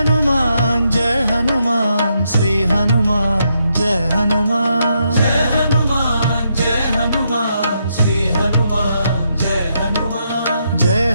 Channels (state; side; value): inverted; both; correlation -0.79